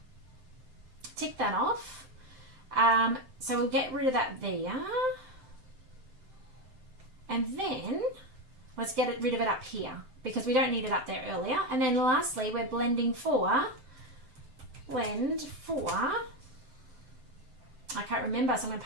Tick that off. So we'll get rid of that there. And then let's get rid of it up here because we don't need it up there earlier. And then lastly, we're blend for, I can't remember, so I'm going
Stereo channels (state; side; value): late; left; 7.7 ms